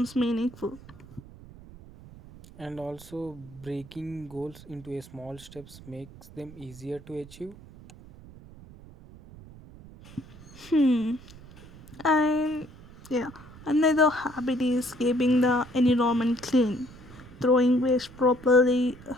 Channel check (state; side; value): noise; right; rumble, 19 dB below the sound